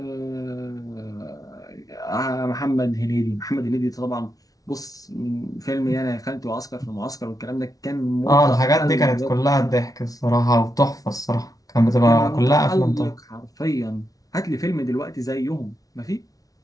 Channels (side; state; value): right; late; 0.18 ms